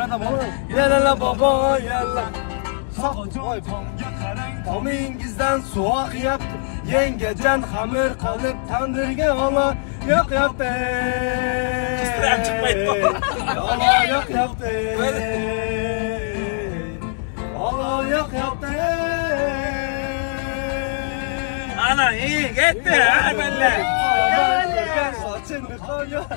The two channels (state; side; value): silent; right; 65 dB below the other